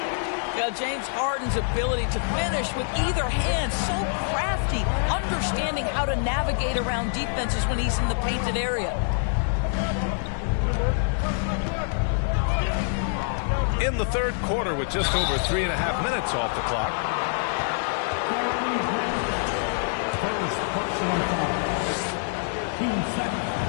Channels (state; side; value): silent; right; digital silence